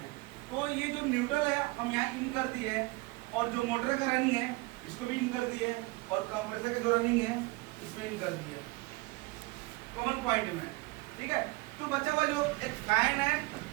तो ये जो न्यूट्रल है हम यहाँ इन कर दिए, और जो मोटर का रनिंग है इसको भी इन कर दिए, और कंप्रेसर का जो रनिंग है इसमें इन कर दिए कॉमन पॉइंट में। ठीक है, तो बचा हुआ जो एक फैन है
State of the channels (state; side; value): quieter; left; 23.6 dB